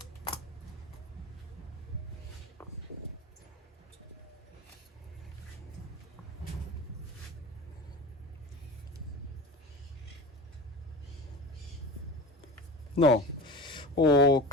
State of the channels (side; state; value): both; normal; correlation 0.32